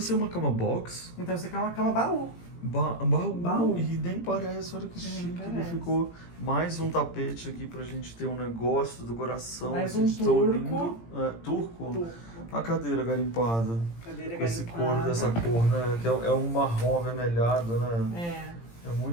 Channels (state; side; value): late; right; 17 ms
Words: é uma cama box? Então isso aqui é uma cama baú. Baú. Baú. E nem parece, olha que Nem chique. Ele parece. ficou mais um tapete aqui pra gente ter um negócio do coração. Mais assim, um de tão turco. lindo. É, turco? Turco. A cadeira garimpada. Cadeira Com esse garimpada. couro dessa cor, né? Que é um marrom avermelhado, né? É